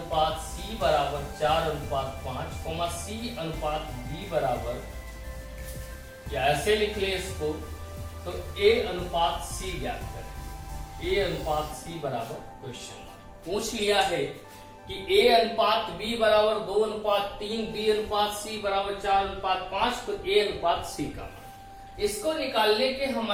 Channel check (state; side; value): identical; both; correlation 1.00